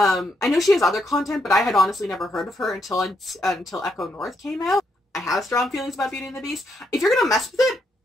know she has other content, but I had honestly never heard of her until Echo North came out. I have strong feelings about Beauty and the Beast. If you're gonna mess with it,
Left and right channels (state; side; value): normal; both; correlation 0.78